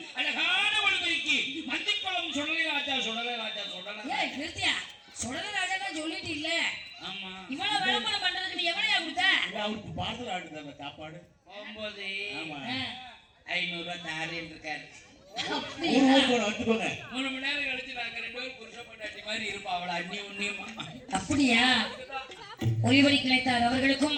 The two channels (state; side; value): identical; both; correlation 1.00